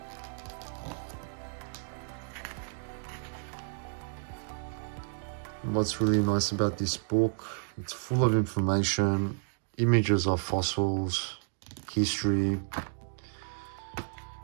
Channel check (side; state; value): left; silent; digital silence